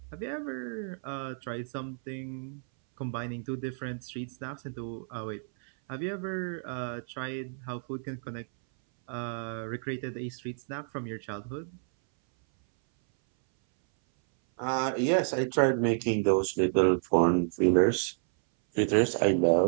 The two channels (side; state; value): left; silent; 58 dB below the other